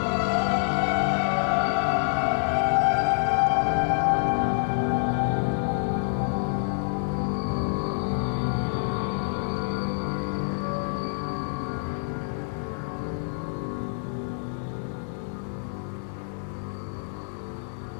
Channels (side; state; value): right; silent; 57 dB below the other